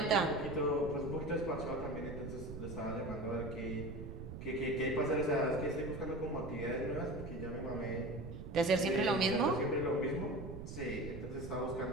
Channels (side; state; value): right; noise; rumble, 9 dB below the sound